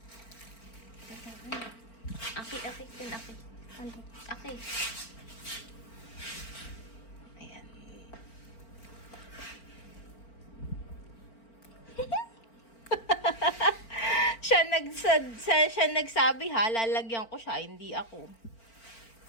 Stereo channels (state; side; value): late; right; 4.4 ms